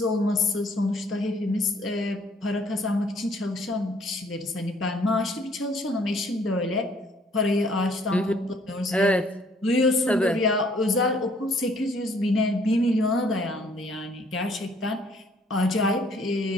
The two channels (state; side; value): normal; both; correlation 0.61